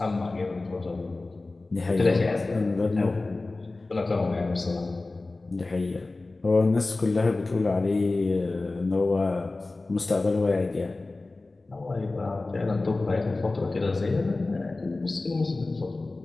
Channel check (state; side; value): quieter; right; 3.2 dB